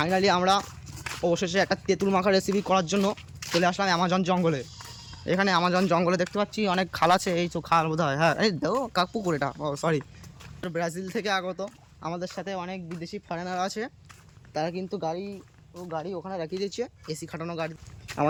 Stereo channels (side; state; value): both; identical; correlation 1.00